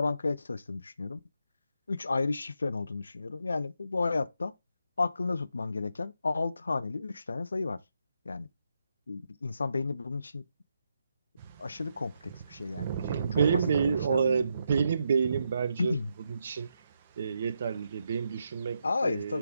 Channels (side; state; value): both; inverted; correlation -0.82